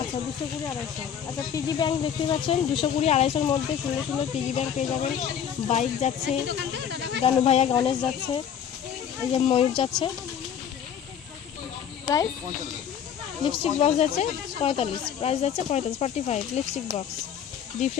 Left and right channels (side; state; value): right; quieter; 8.6 dB